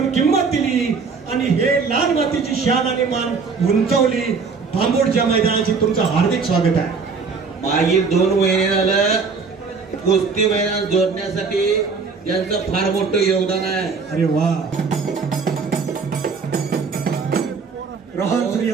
किंमत दिली आणि हे लाल मातीची शान आणि मान उंचावली. बांबोडच्या मैदानाची तुमचं हार्दिक स्वागत आहे. मागील 2 महिने झालं कुस्ती मैदान जोडण्यासाठी यांचं फार मोठं योगदान आहे. अरे वा. रोहन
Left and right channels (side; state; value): left; quieter; 5.0 dB